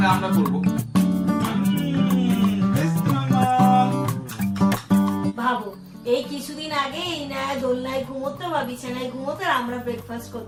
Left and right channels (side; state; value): both; identical; correlation 1.00